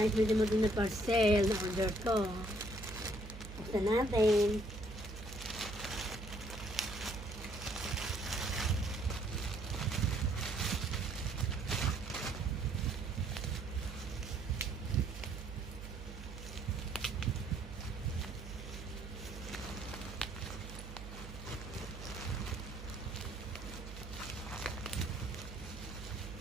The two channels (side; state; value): right; noise; hum, 11 dB below the sound